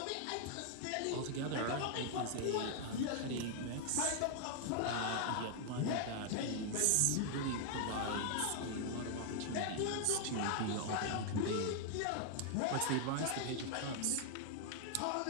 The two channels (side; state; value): both; different; correlation 0.00